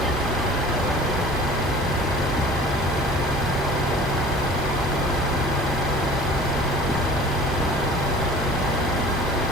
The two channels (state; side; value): normal; both; correlation 0.44